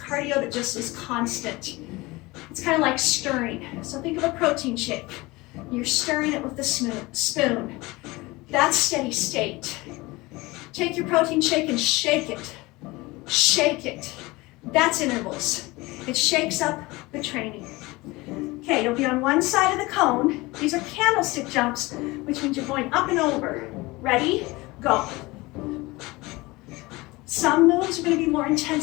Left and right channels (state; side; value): quieter; right; 22.0 dB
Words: that just is constant. It's kind of like stirring. So think of a protein shake. You're stirring it with the spoon. That's steady state. Take your protein shake and shake it. Shake it. That's intervals. It shakes up the training. Okay, you'll be on one side of the cone. These are candlestick jumps, which means you're going up and over. Ready? Go. Some moves are going to be more